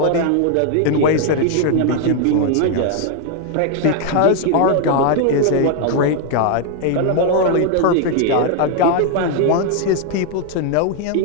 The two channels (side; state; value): both; different; correlation 0.00